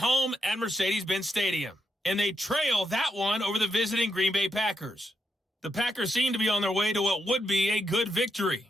at Mercedes-Benz Stadium. And they trail that one over the visiting Green Bay Packers. The Packers seem to be on their way to what would be a good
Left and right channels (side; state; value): both; normal; correlation 0.81